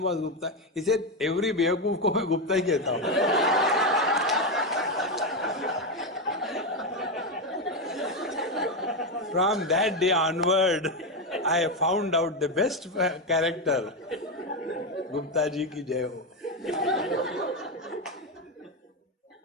was Gupta? He said, every बेवकूफ को मैं गुप्ता ही कहता हूँ. From that day onward, I found out the best character. Gupta ji ki jai ho.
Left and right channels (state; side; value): normal; both; correlation 0.10